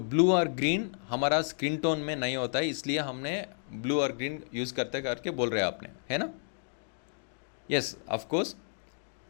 ब्लू और ग्रीन हमारा स्क्रीन टोन में नहीं होता है, इसलिए हमने ब्लू और ग्रीन यूज़ करते करके बोल रहे हैं आपने, है ना? Yes of course.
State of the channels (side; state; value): right; silent; digital silence